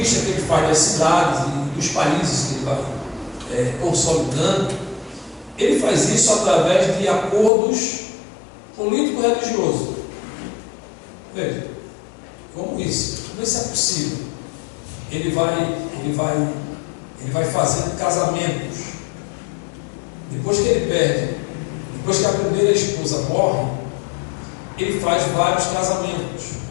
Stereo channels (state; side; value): drops out; right; at 7.5 s